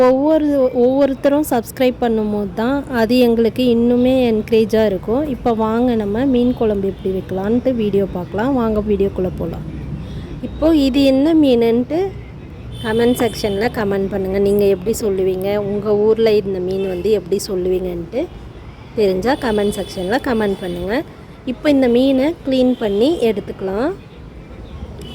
ஒவ்வொருத்தரும் சப்ஸ்கிரைப் பண்ணும்போது தான் அது எங்களுக்கு இன்னுமே என்கரேஜாக இருக்கும். இப்போ வாங்க நம்ம மீன் குழம்பு எப்படி வைக்கலான்ட்டு வீடியோ பார்க்கலாம். வாங்க வீடியோக்குள்ளே போகலாம். இப்போது இது என்ன மீனுன்ட்டு கமெண்ட் செக்ஷனில் கமெண்ட் பண்ணுங்கள். நீங்கள் எப்படி சொல்லுவீங்க, உங்கள் ஊரில் இந்த மீன் எப்படி சொல்லுவீங்கன்ட்டு தெரிஞ்சால் கமெண்ட் செக்ஷனில் கமெண்ட் பண்ணுங்கள். இப்போ இந்த மீனை க்ளீன் பண்ணி எடுத்துக்கலாம்.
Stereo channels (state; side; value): identical; both; correlation 1.00